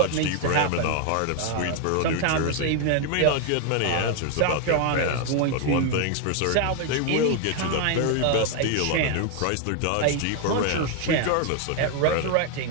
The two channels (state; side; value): different; both; correlation 0.01